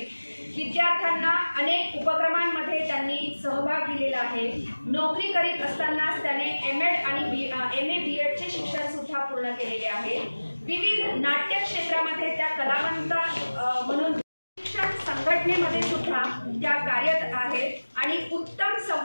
विद्यार्थ्यांना अनेक उपक्रमांमध्ये त्यांनी सहभाग दिलेला आहे। नोकरी करीत असतानाच त्याने MA आणि MA BEdचे शिक्षण सुद्धा पूर्ण केलेले आहे। विविध नाट्य क्षेत्रामध्ये त्या कलावंत म्हणून शिक्षण संघटनेमध्ये सुद्धा त्या कार्यरत आहेत आणि उत्तम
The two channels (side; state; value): both; inverted; correlation -1.00